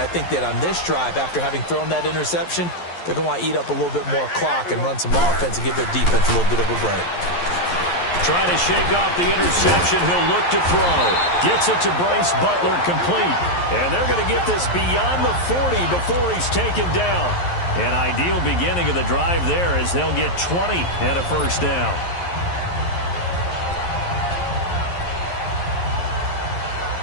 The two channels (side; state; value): right; late; 11 ms